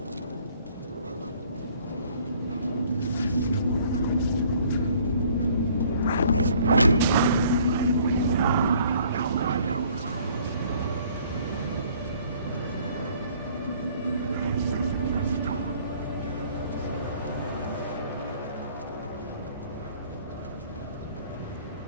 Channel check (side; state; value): both; inverted; correlation -0.57